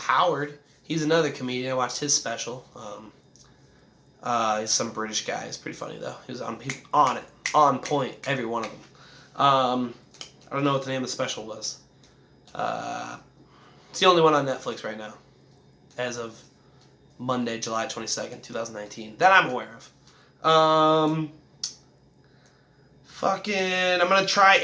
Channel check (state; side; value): identical; both; correlation 1.00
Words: He's another comedian. I watched his special. He's some British guy. He's pretty funny though. He's on it, on point, every one of them. I don't know what the name of the special was. It's the only one on Netflix right now, as of Monday, July 22nd, 2019, that I'm aware of. I'm gonna try